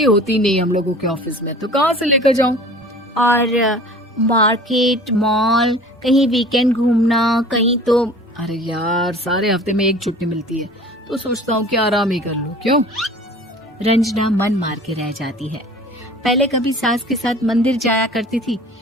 होती नहीं हम लोगों के ऑफिस में, तो कहाँ से लेकर जाऊं? और मार्केट, मॉल, कहीं वीकेंड घूमना, कहीं तो। अरे यार, सारे हफ्ते में एक छुट्टी मिलती है, तो सोचता हूँ कि आराम ही कर लूं। क्यों? रंजना मन मार के रह जाती है। पहले कभी सास के साथ मंदिर जाया करती थी,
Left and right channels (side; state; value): both; normal; correlation 0.44